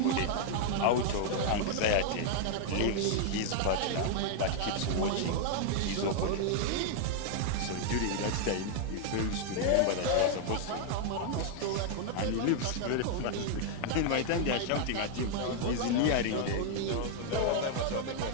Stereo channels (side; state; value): both; different; correlation 0.00